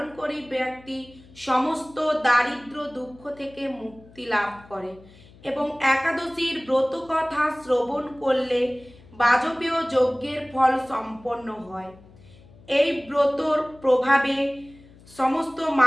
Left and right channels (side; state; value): left; noise; hum, 24 dB below the sound